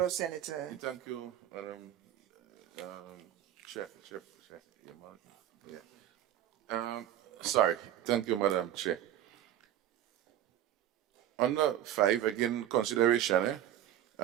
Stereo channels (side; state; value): left; quieter; 11.6 dB